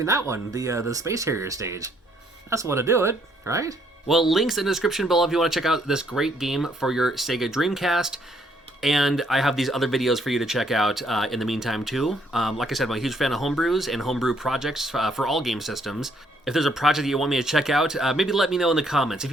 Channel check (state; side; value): normal; both; correlation 0.68